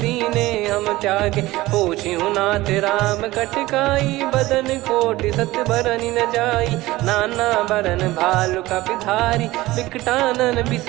दीने हम त्यागे। पूछिहु नाथ राम कटकाई बदन कोटि सत बरनि न जाई। नाना बरन भालु कपिधारी विकटानन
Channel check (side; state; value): left; quieter; 18.3 dB